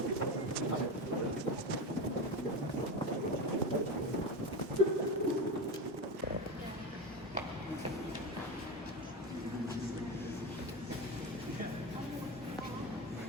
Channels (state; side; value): normal; both; correlation 0.20